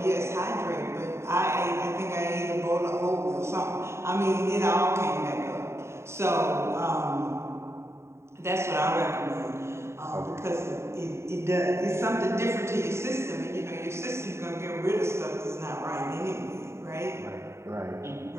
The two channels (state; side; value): late; left; 0.13 ms